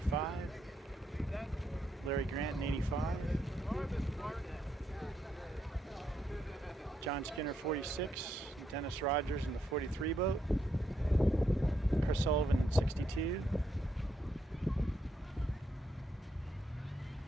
Larry Grant in 85. John Skinner 46, Dennis Rogers in the 43 boat, Chris Sullivan in 62,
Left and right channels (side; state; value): both; normal; correlation 0.78